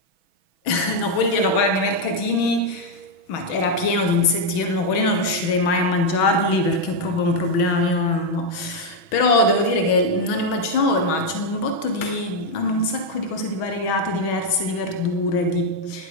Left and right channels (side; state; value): right; late; 6.2 ms